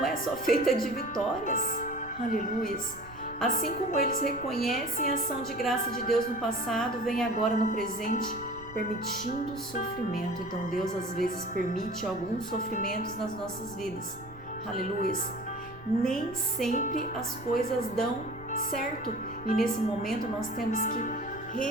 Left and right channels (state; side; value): noise; right; rumble, 19 dB below the sound